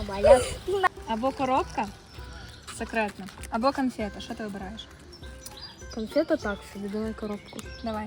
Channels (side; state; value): both; identical; correlation 1.00